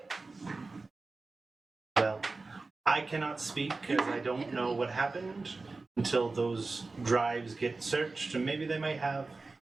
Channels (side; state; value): left; quieter; 3.7 dB